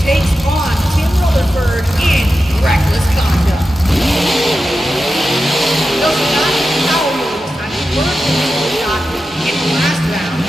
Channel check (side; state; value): both; normal; correlation 0.91